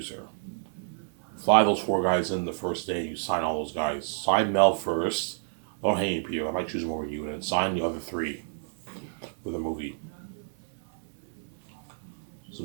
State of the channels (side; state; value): left; silent; 58 dB below the other